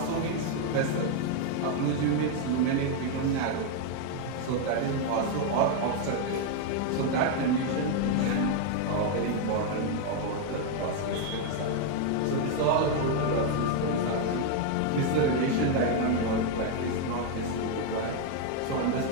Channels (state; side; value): different; both; correlation 0.01